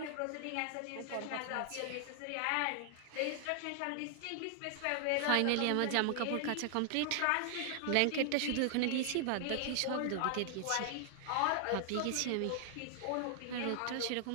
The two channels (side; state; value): both; different; correlation 0.00